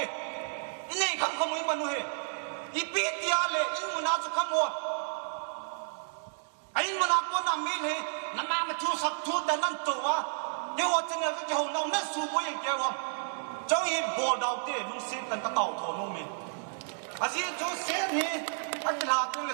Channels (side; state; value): left; silent; digital silence